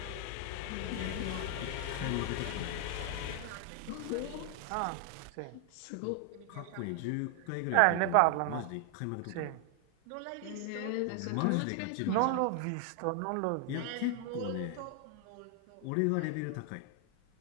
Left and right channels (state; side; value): different; both; correlation 0.00